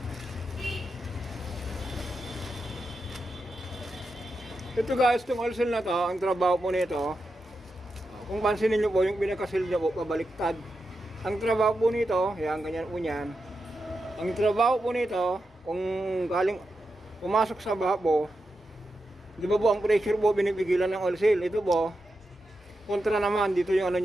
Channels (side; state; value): both; normal; correlation 0.88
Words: Ito guys, itong oil seal na to, ang trabaho po nito, kung pansinin nyo po, yung pinakasil nyo po, pabaliktad. Ang trabaho po nito, yan, ganyan po yan. Ang trabaho po nito, kung galing, pumasok sa baha po, di ba po ang pressure po binibigilan ng oil seal? Ito po, kontra naman, dito yung ano